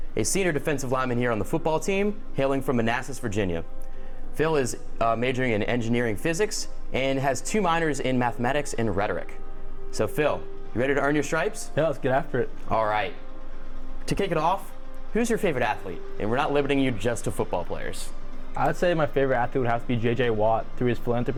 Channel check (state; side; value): identical; both; correlation 1.00